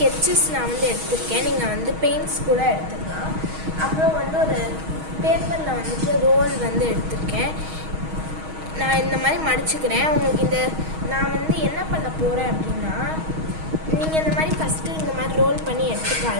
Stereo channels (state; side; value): late; left; 6.3 ms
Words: நான் வந்து எடுத்திருக்கேன். நீங்கள் வந்து பெயிண்ட்ஸ் கூட எடுத்துக்கலாம். அப்புறம் வந்து ஒரு பேப்பரில் வந்துட்டு ரோல் வந்து எடுத்திருக்கேன். நான் இந்த மாதிரி மடிச்சுக்கிறேன். உங்களுக்கு இந்த நான் வந்து என்ன பண்ண போகிறேன் அப்படின்னா, நீங்கள் இந்த மாதிரி ஃபஸ்ட்டு இந்த மாதிரி ரோல் பண்ணி